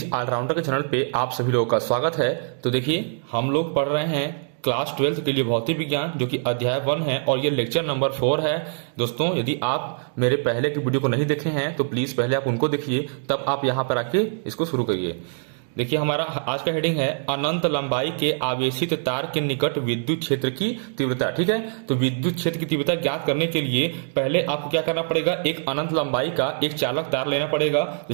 ऑलराउंडर के चैनल पे आप सभी लोगों का स्वागत है। तो देखिए, हम लोग पढ़ रहे हैं क्लास 12 के लिए भौतिक विज्ञान, जो कि अध्याय 1 है और ये लेक्चर नंबर 4 है। दोस्तों, यदि आप मेरे पहले की वीडियो को नहीं देखे हैं तो प्लीज पहले आप उनको देखिए, तब आप यहाँ पर आके इसको शुरू करिए। देखिए, हमारा आज का हेडिंग है अनंत लंबाई के आवेशित तार के निकट विद्युत क्षेत्र की तीव्रता। ठीक है, तो विद्युत क्षेत्र की तीव्रता ज्ञात करने के लिए पहले आपको क्या करना पड़ेगा, एक अनंत लंबाई का एक चालक तार लेना पड़ेगा।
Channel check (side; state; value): left; silent; digital silence